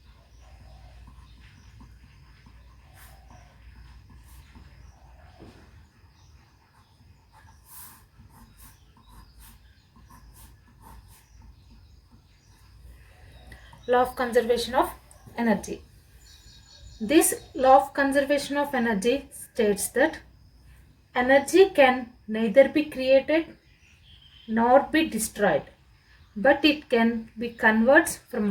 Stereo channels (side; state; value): both; identical; correlation 1.00